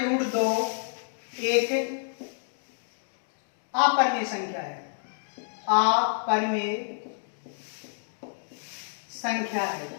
एक अपरमेय संख्या है, अपरमेय संख्या है।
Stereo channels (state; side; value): silent; right; digital silence